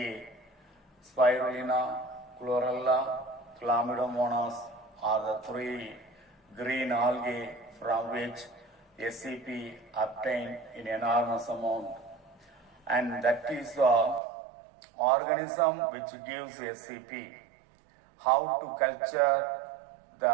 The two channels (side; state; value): left; drops out; at 14.2 s